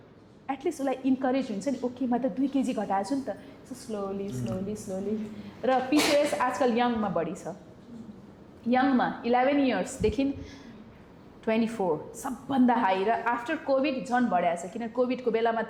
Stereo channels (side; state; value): both; identical; correlation 1.00